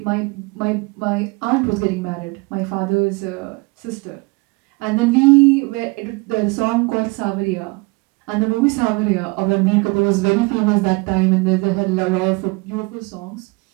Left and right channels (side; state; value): left; quieter; 27.1 dB